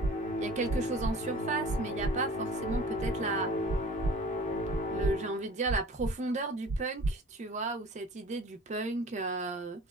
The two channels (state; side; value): normal; both; correlation 0.45